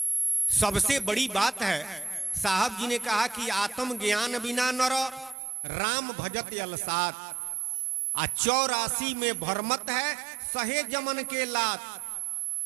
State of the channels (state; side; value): drops out; left; at 5.4 s